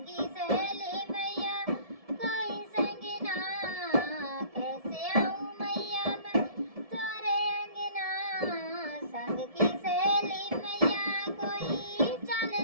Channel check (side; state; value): left; late; 1.7 ms